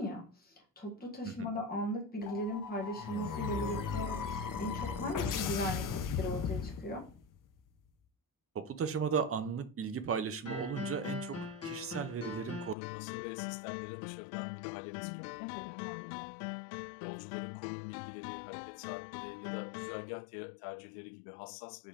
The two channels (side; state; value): right; drops out; at 12.8 s